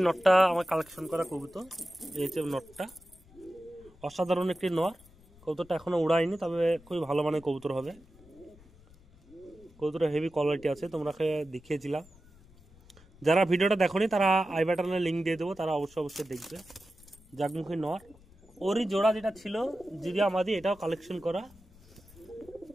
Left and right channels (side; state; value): left; noise; rumble, 25 dB below the sound